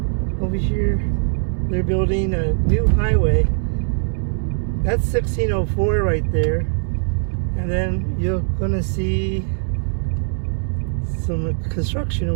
over here, they're building a new highway. That's 1604 right there, and then you're gonna see some construction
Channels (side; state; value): left; silent; digital silence